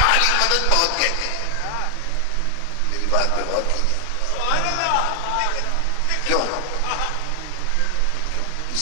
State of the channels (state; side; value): different; both; correlation 0.00